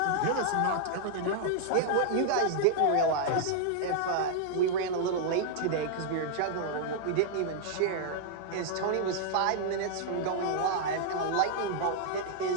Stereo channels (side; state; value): both; different; correlation -0.01